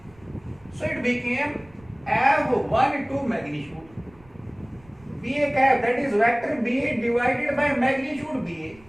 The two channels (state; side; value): noise; right; rumble, 26 dB below the sound